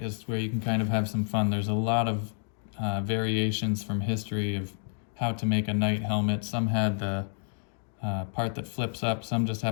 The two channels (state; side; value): silent; right; digital silence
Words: is where you can kind of have some fun. There's a lot of variations from history of how to make a knight helmet. Some had the part that flips up, some just